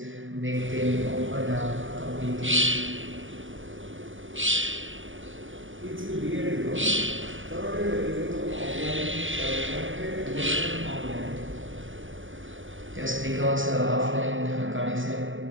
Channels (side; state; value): left; late; 0.57 ms